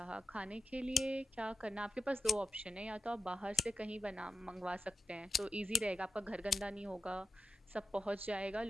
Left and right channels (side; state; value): both; normal; correlation 0.89